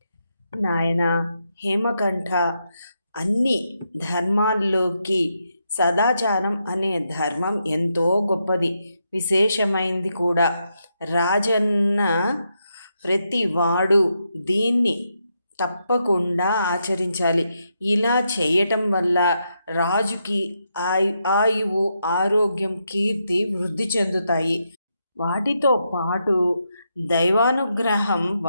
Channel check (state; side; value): inverted; both; correlation -0.82